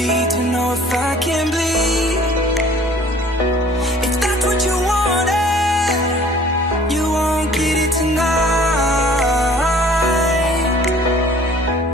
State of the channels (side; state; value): both; normal; correlation 0.52